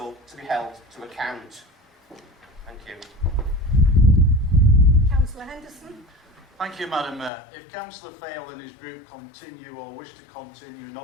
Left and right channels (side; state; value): right; drops out; at 7.3 s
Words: to be held to account. Thank you. Councillor Henderson. Thank you, Madam Mayor. If Councillor Fail and his group continue or wish to continue